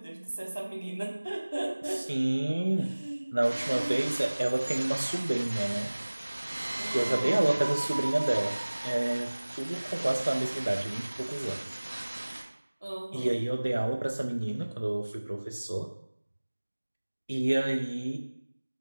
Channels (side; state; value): both; inverted; correlation -1.00